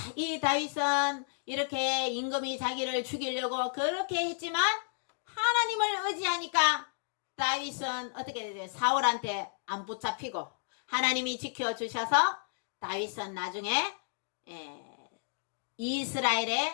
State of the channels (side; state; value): right; silent; digital silence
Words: 이 다윗은 이렇게 임금이 자기를 죽이려고 그렇게 했지만 하나님을 의지하니까 다윗은 어떻게 되죠? 사울한테 안 붙잡히고 하나님이 지켜주셔서 다윗은 나중에